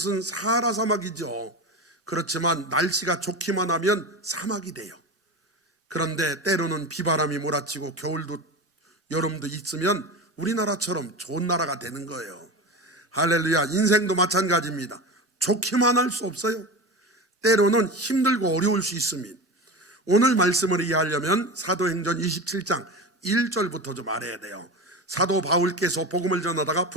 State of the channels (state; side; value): normal; both; correlation 0.26